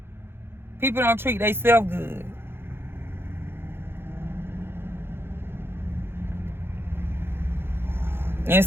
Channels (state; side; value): late; left; 0.11 ms